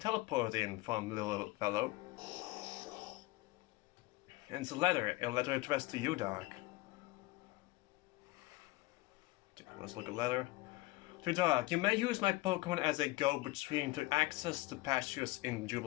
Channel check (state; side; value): quieter; right; 20.6 dB